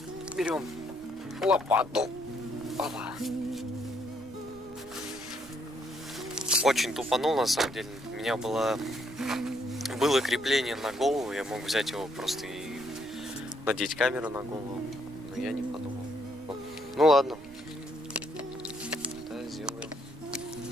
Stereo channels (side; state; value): right; noise; rumble, 22 dB below the sound